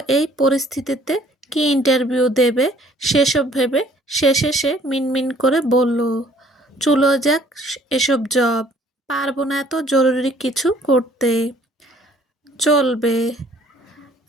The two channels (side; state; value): both; normal; correlation 0.58